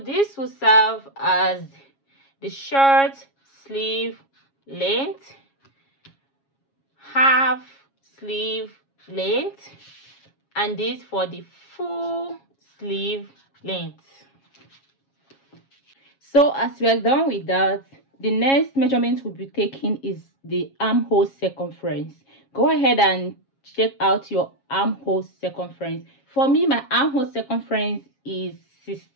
this will serve as the short sleeve length, half sleeve length, and this for the full sleeve length. So as we are done with that, the next measurement we'll be taking is the armhole circumference. Go ahead and check out your armhole circumference. For me, my armhole circumference is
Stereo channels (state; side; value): late; right; 7.3 ms